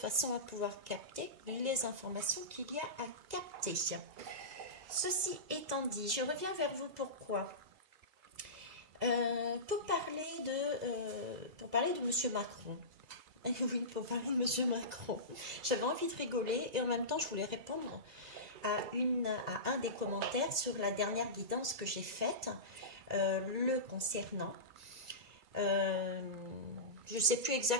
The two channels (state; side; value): late; left; 2.0 ms